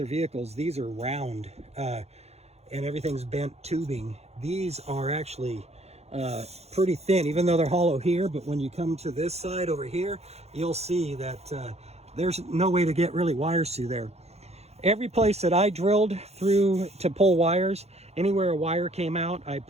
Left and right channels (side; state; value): left; late; 0.31 ms